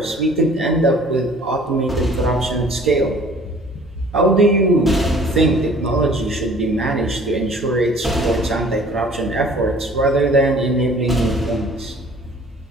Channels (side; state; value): both; normal; correlation 0.52